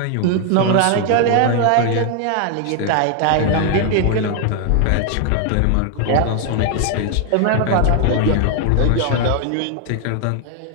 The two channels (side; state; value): both; different; correlation 0.00